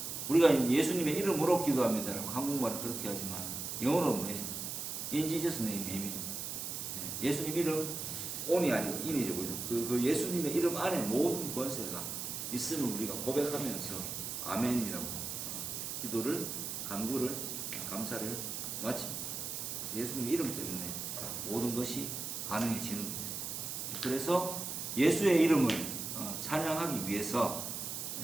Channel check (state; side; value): noise; right; hiss, 5 dB below the sound